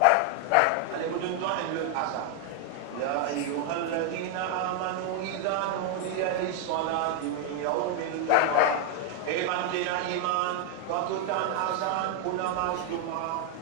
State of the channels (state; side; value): different; both; correlation 0.00